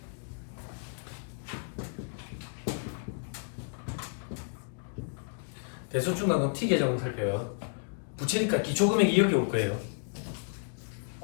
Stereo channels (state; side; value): silent; right; digital silence